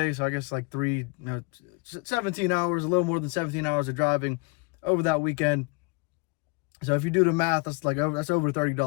so I guess like 17 hours, a little more than 17 hours of driving over that weekend. So if you do the math, that's over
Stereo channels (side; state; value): right; quieter; 29.5 dB